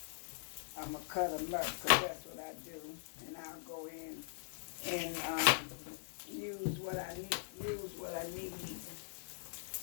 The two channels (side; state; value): right; silent; digital silence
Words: I'm going to cut them up because that's what I do. And I'll go in and use what I need.